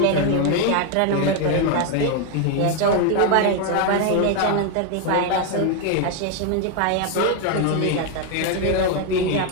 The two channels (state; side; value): different; both; correlation 0.01